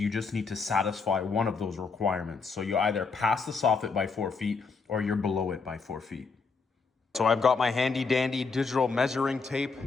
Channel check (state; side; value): quieter; right; 4.7 dB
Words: just need to satisfy one of those requirements. So you either pass the soffit by 4 feet or you're below it by 4 feet. So I've got my handy dandy digital measuring tape.